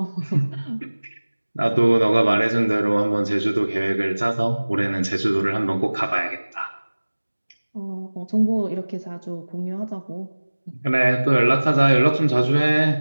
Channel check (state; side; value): inverted; both; correlation -1.00